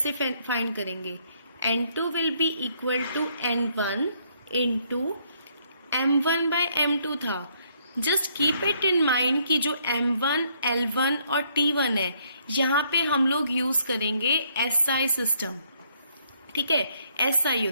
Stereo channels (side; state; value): both; inverted; correlation -0.69